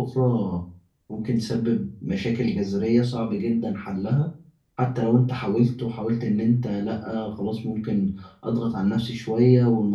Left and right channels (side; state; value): both; identical; correlation 1.00